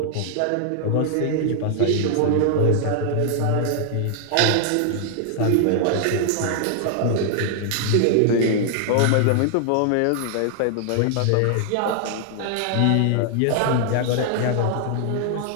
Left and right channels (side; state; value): both; different; correlation 0.00